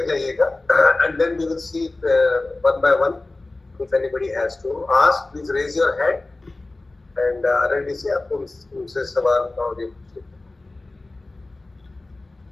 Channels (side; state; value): right; quieter; 3.0 dB